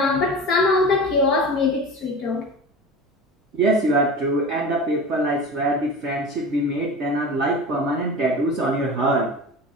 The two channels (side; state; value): both; normal; correlation 0.32